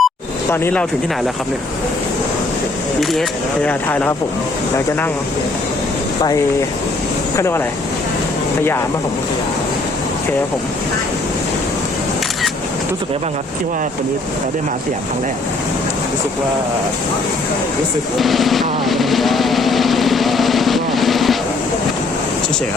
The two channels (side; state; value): right; quieter; 3.0 dB